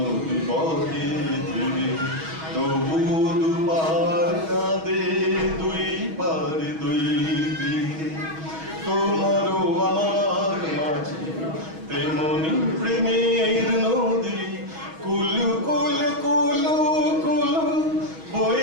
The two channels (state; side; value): late; left; 6.2 ms